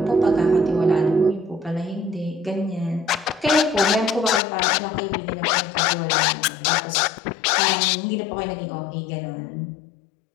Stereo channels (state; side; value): drops out; right; at 4.4 s